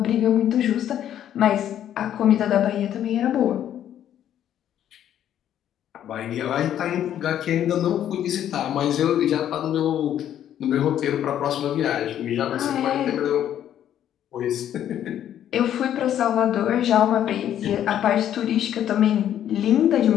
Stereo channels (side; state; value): right; quieter; 10.7 dB